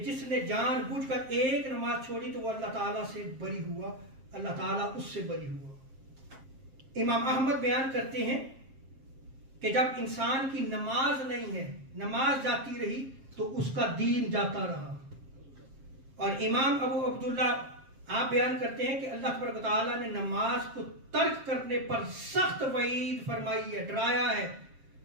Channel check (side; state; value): left; late; 7.5 ms